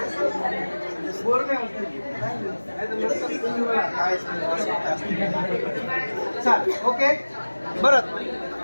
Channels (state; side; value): inverted; both; correlation -1.00